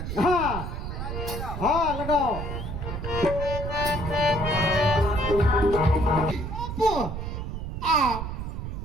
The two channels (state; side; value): noise; right; rumble, 5 dB below the sound